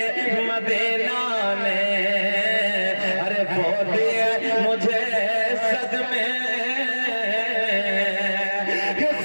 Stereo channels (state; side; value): inverted; both; correlation -1.00